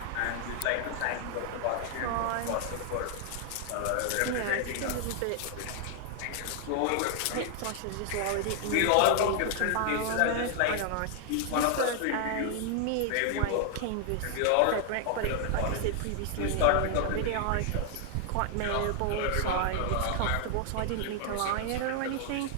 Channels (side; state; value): both; different; correlation 0.00